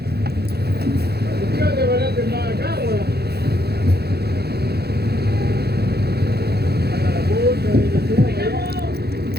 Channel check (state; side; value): late; left; 0.47 ms